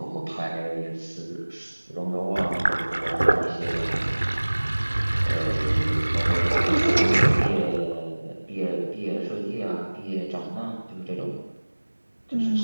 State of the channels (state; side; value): inverted; both; correlation -1.00